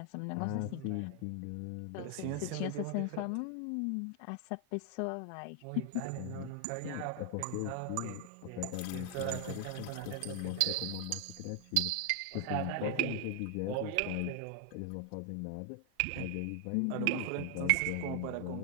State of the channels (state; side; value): different; both; correlation 0.00